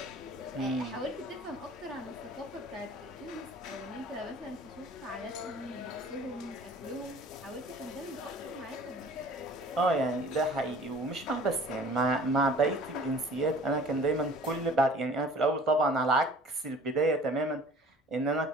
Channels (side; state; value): both; normal; correlation 0.48